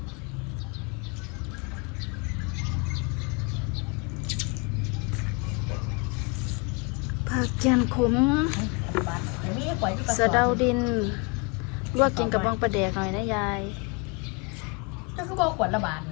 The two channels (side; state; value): right; quieter; 30.2 dB